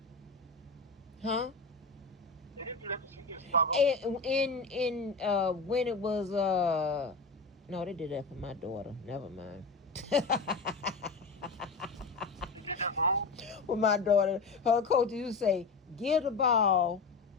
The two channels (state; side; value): quieter; right; 4.1 dB